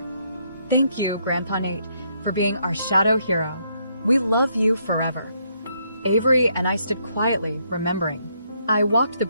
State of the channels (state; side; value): inverted; both; correlation -0.73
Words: Thank you, Grandpa Nate, for being our shadow hero. We love you forever. Avery and I stood quietly, remembering. I walked the